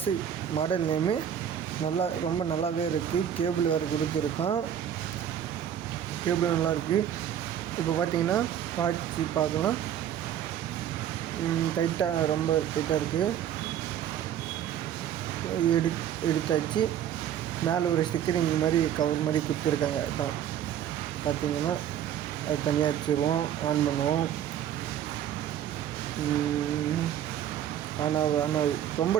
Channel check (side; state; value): left; quieter; 10.0 dB